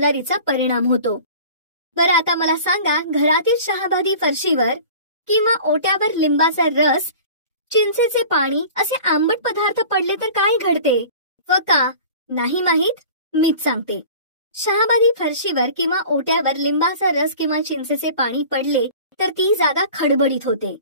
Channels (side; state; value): both; inverted; correlation -0.42